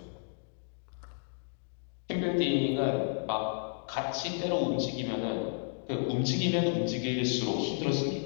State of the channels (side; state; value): right; silent; digital silence